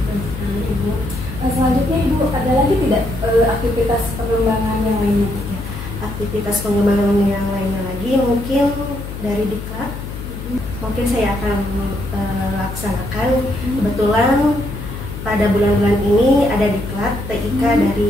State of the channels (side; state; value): left; noise; hum, 9 dB below the sound